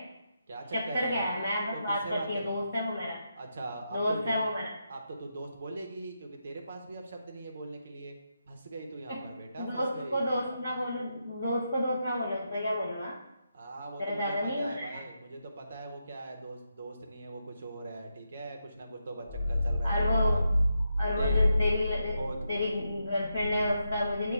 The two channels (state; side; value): inverted; both; correlation -0.84